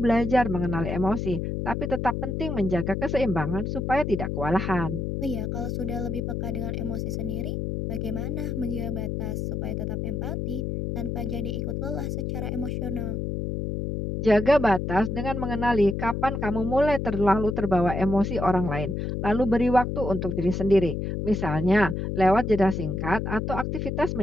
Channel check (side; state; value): left; noise; hum, 2 dB below the sound